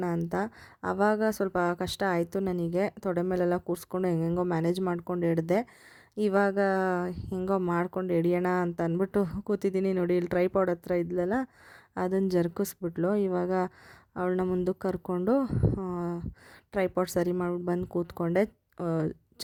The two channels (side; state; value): both; identical; correlation 1.00